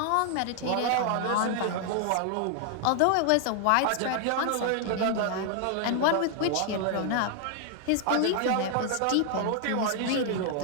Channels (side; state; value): both; different; correlation 0.00